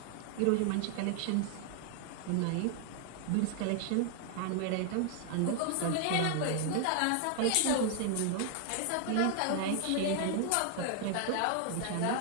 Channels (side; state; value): both; different; correlation 0.00